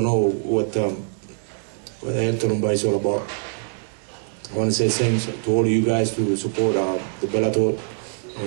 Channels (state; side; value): silent; left; digital silence